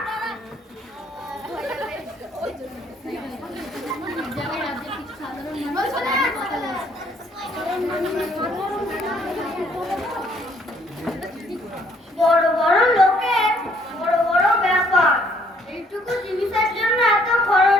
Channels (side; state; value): both; normal; correlation 0.64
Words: বড় বড় লোকের বড় বড় ব্যাপার, এইটুকু জিনিসের জন্য এত